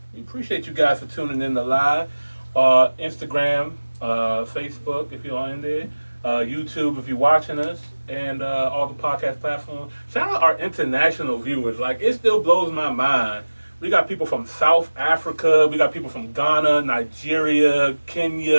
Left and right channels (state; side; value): inverted; both; correlation -1.00